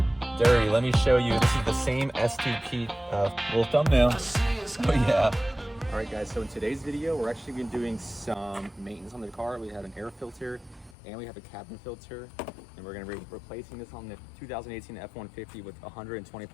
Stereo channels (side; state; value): right; drops out; at 11.0 s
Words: dirty. Let me show you. This is the same STP little thumbnail. Oh yeah. All right guys, so in today's video, we're actually going to be doing some maintenance on the car. We have an air filter and we have a cabin filter, and we're going to be replacing this on the 2018 F150 with